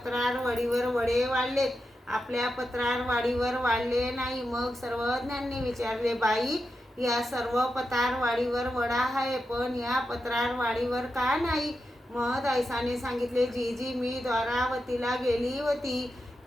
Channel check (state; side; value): normal; both; correlation 0.88